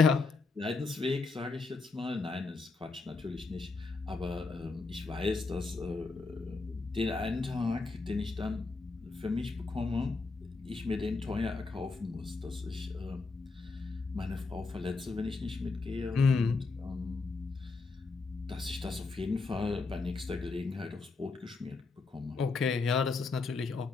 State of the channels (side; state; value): right; quieter; 4.0 dB